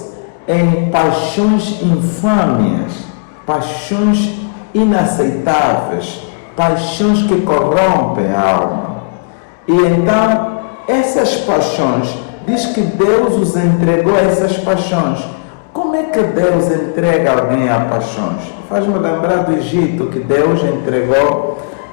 em paixões infâmias, paixões inaceitáveis, paixões que corrompem a alma. E então, essas paixões, diz que Deus os entregou a essas paixões. Como é que Deus entrega alguém a paixões? Faz-me lembrar do Egito, que Deus entregou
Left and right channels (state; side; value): quieter; right; 36.5 dB